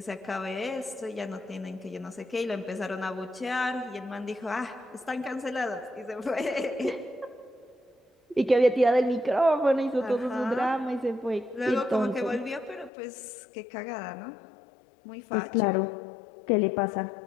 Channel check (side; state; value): right; drops out; at 12.9 s